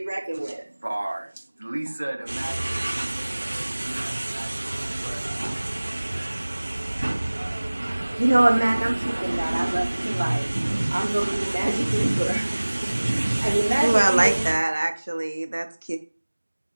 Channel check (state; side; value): inverted; both; correlation -1.00